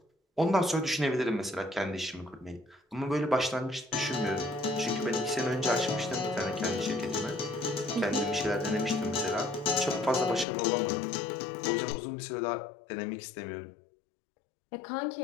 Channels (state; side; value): drops out; right; at 10.5 s